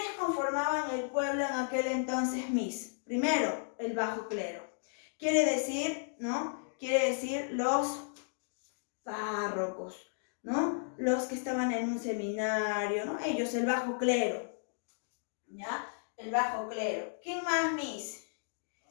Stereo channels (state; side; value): silent; right; digital silence